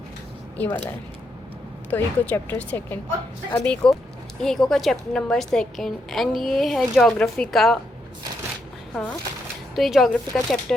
ये वाला है। तो इको चैप्टर 2। अब इको का चैप्टर नंबर 2। एंड ये है जोग्राफी का। हाँ, तो ये जोग्राफी का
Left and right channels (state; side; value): normal; both; correlation 0.80